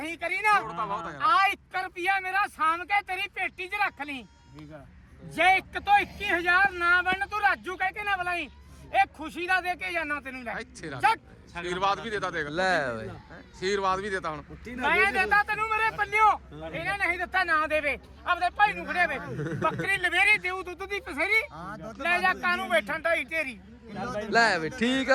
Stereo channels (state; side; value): identical; both; correlation 1.00